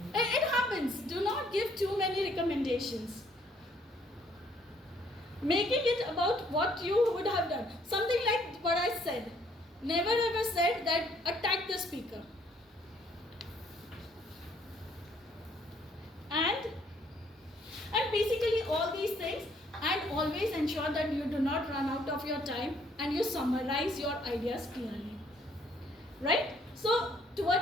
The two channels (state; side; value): normal; both; correlation 0.65